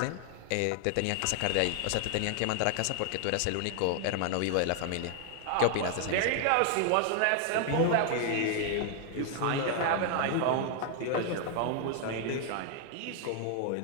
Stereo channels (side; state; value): both; different; correlation 0.00